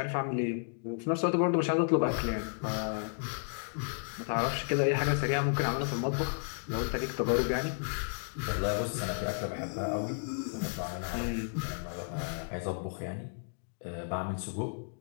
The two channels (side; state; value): right; silent; digital silence